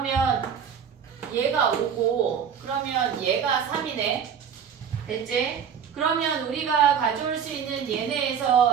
얘가 5고 그러면 얘가 3이네. 됐지? 그러면 우리가 가져올 수 있는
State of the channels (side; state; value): left; quieter; 7.6 dB